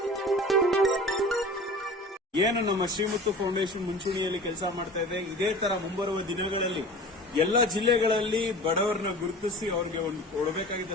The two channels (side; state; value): both; normal; correlation 0.39